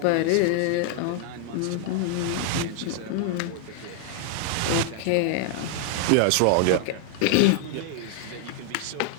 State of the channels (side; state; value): both; different; correlation 0.00